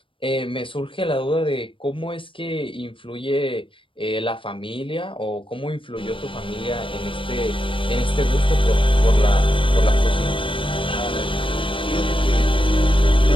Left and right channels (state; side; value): late; right; 0.25 ms